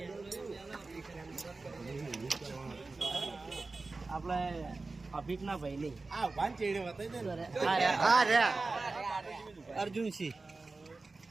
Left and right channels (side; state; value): left; quieter; 3.6 dB